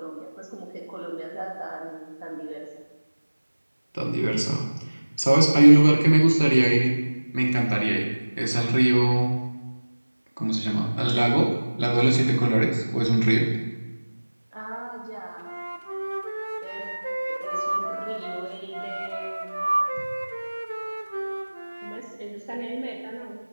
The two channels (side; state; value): both; inverted; correlation -1.00